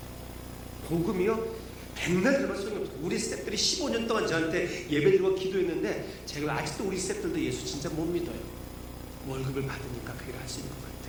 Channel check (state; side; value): identical; both; correlation 1.00